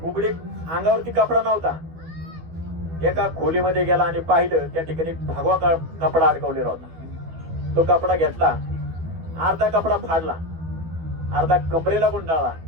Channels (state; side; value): late; left; 12 ms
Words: उघडी अंगावरती कपडा नव्हता. एका खोलीमध्ये गेला आणि पाहिलं त्या ठिकाणी भगवा कपडा अडकवलेला होता. तो कपडा घेतला, अर्धा कपडा फाडला, अर्धा कमरेला गुंडाळला